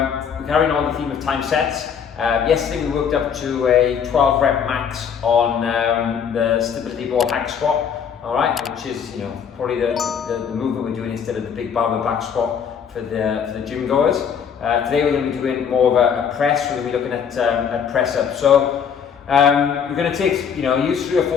carrying on the theme of time sets. Yesterday we worked up to a 12 rep max on the stability ball hack squat, alright, which is probably the movement we're doing instead of the big barbell back squat for the gym goers. Today we're going to be doing more of a press. We're going to be looking at press up. So we're going to take, use 3 or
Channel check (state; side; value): quieter; right; 7.4 dB